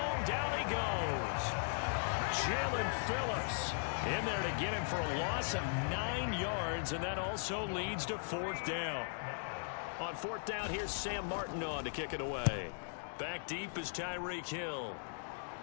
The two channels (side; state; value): right; silent; digital silence